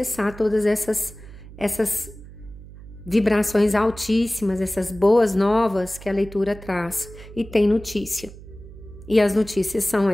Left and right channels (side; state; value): right; noise; hum, 17 dB below the sound